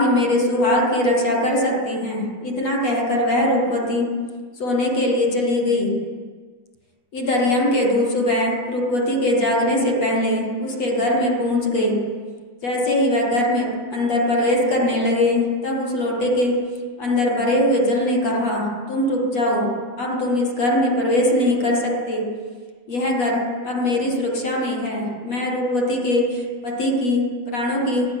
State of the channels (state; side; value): late; right; 8.2 ms